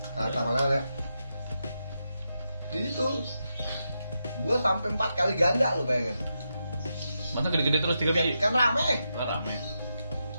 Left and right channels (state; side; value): inverted; both; correlation -0.86